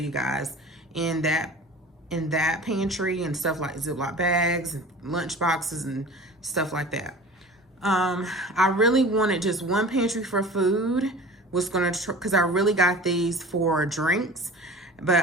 guys, in that pantry and stuff like Ziploc bags, and lunch boxes and stuff like that. I really wanted just one pantry for food, because I really got these for drinks, but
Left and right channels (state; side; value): normal; both; correlation 0.39